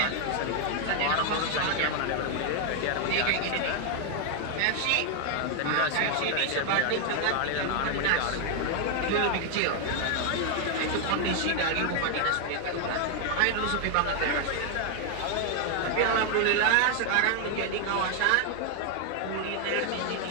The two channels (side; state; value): both; different; correlation 0.00